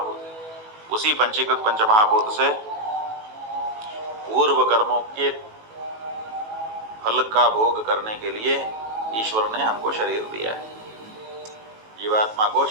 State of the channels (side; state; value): left; late; 18 ms